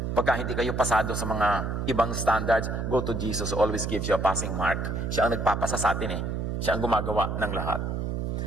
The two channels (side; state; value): right; noise; hum, 2 dB below the sound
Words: Pagka hindi kayo pasado sa mga ibang standards, go to Jesus who always gives you a passing mark. Siya ang nagpapasa sa atin eh. Siya ang gumagawa ng lahat.